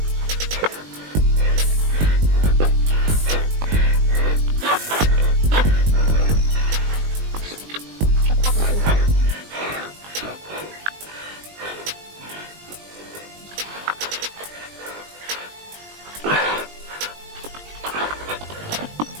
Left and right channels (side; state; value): left; late; 20 ms